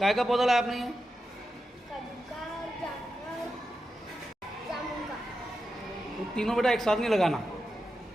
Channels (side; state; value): both; normal; correlation 0.90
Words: का पौधा लाया आपने ये? कद्दू का, जामुन का। तो तीनों बेटा एक साथ नहीं लगाना